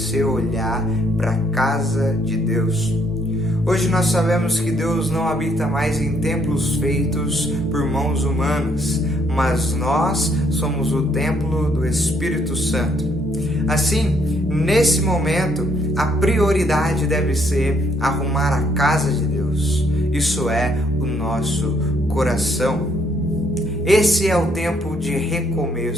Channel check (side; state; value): both; normal; correlation 0.69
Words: olhar para a casa de Deus. Hoje nós sabemos que Deus não habita mais em templos feitos por mãos humanas, mas nós somos o templo do Espírito Santo. Assim, nesse momento, a prioridade deve ser arrumar a casa de Deus. Isso é o nosso coração. Esse é o tempo de